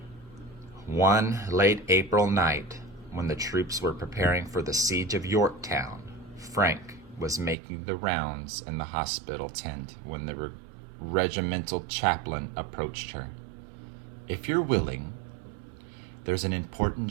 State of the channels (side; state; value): left; drops out; at 7.6 s